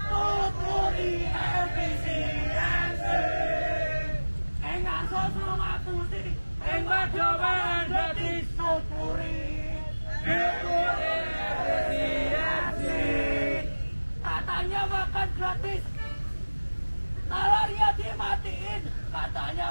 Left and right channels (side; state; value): both; inverted; correlation -1.00